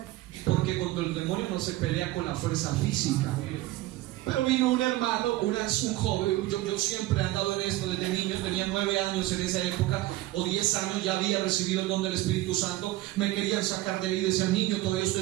Porque contra el demonio no se pelea con la fuerza física. Pero vino un hermano, un joven. Yo siempre he andado en esto desde niño. Tenía 9 años en esa época, o 10 años, ya había recibido el don del Espíritu Santo. Me querían sacar de ahí, decían: niño, todavía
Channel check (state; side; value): quieter; left; 17.1 dB